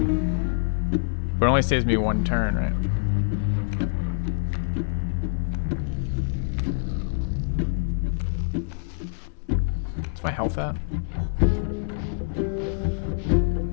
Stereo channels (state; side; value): silent; right; digital silence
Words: it only saves me 1 turn, right? My health at